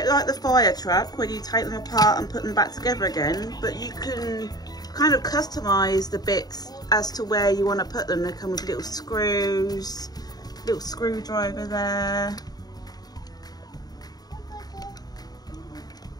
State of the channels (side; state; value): right; late; 0.19 ms